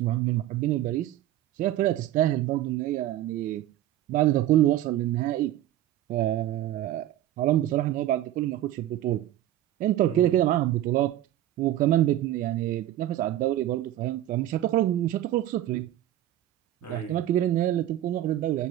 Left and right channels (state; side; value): quieter; left; 13.2 dB